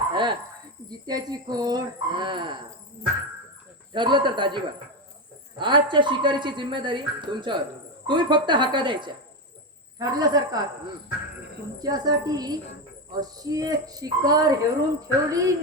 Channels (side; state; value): both; normal; correlation 0.13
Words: हा. जित्याची खोड. हा. ठरलं तर दाजीबा आजच्या शिकारीची जिम्मेदारी तुमच्यावर. तुम्ही फक्त हाका द्यायच्या. ठरलं सरकार. तुमच्यासाठी अशी एक शिकार हेरून ठेवली